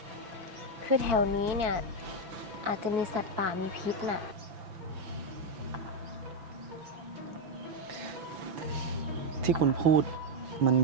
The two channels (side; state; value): left; late; 5.9 ms